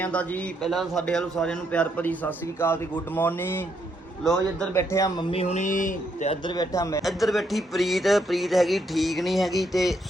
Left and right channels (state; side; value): normal; both; correlation 0.75